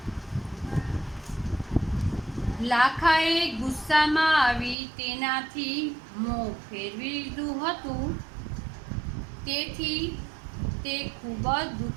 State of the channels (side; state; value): left; drops out; at 4.8 s